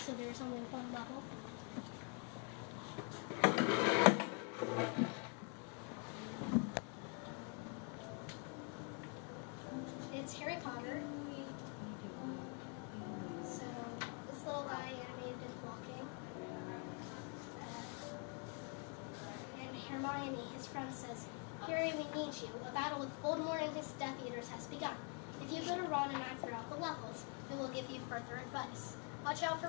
there's only one level. It's Harry Potter. So this little guy animated is walking. And Hermione, his friend, says, "Harry, we need you. A battle with Voldemort and his Death Eaters has begun. If you go to Ron and I throughout the levels, we will give you further advice. Watch out for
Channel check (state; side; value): quieter; right; 36.6 dB